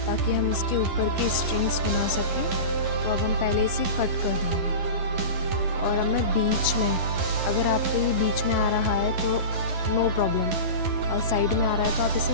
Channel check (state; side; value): late; left; 11 ms